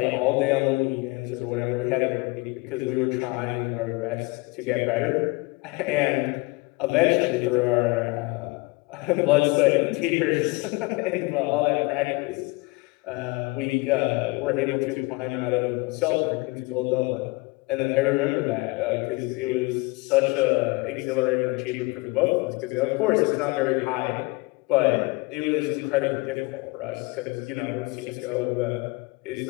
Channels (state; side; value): quieter; right; 25.0 dB